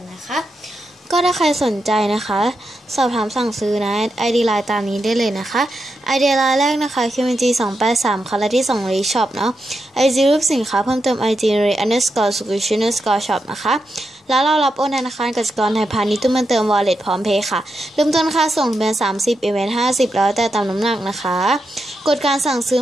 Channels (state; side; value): normal; both; correlation 0.86